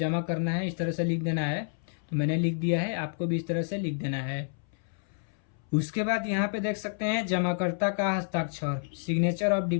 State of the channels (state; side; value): silent; right; 58 dB below the other